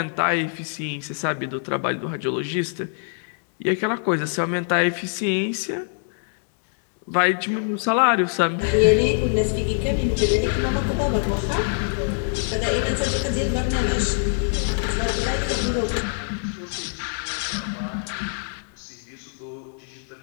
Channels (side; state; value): right; silent; digital silence